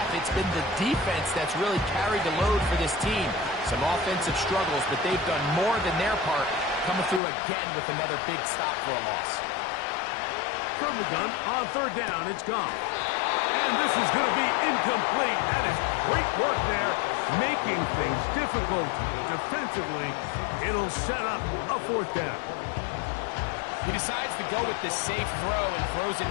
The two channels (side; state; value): right; drops out; at 7.2 s